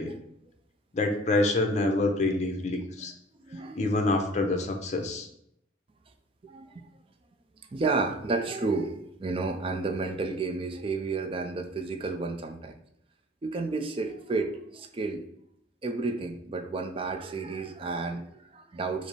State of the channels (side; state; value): both; normal; correlation 0.46